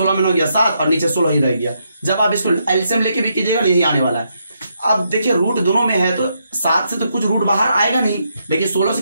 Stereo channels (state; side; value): inverted; both; correlation -0.79